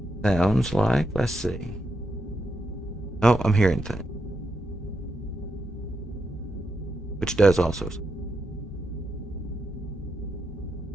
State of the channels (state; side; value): normal; both; correlation 0.84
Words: Sounds like, let's see. Oh, I'm hearing things. Which does also.